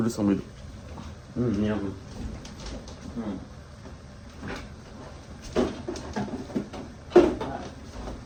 sur mes dos. Merde.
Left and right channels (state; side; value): identical; both; correlation 1.00